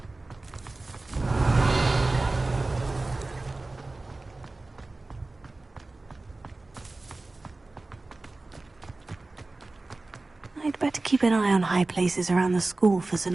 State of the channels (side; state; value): left; quieter; 3.2 dB